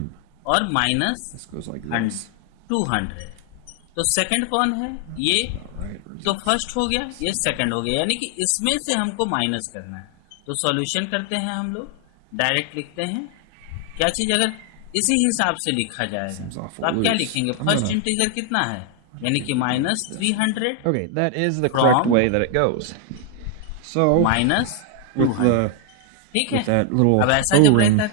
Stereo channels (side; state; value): both; different; correlation 0.00